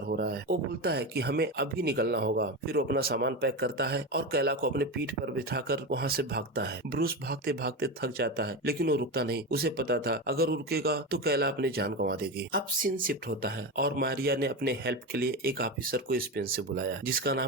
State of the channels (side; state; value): both; normal; correlation 0.19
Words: हो रहा है। वो बोलता है कि हमें अभी निकलना होगा। फिर वो अपना सामान पैक करता है और कैला को अपने पीठ पर बिठाकर वहाँ से भागता है। ब्रूस भागते भागते थक जाता है, लेकिन वो रुकता नहीं। उसे पता था अगर वो रुकेगा तो कैला अपनी जान गंवा देगी। अब सीन शिफ्ट होता है और मारिया ने अपने हेल्प के लिए एक ऑफिसर को स्पेन से बुलाया, जिसका